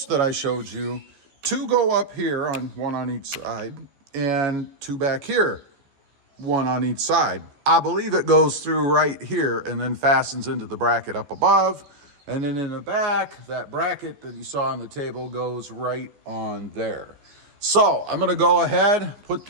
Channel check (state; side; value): late; left; 14 ms